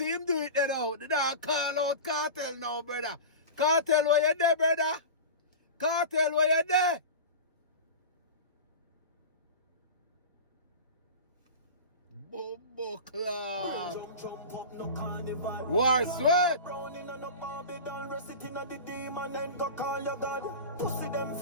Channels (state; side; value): inverted; both; correlation -0.30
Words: him do it there now. The dog call out Kartel now, brother. Kartel, where you there, brother? Kartel, where you there? Bumbo clot. War sweat.